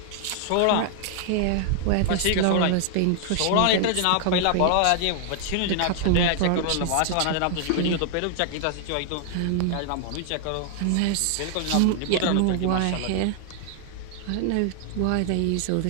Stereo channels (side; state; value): both; different; correlation 0.00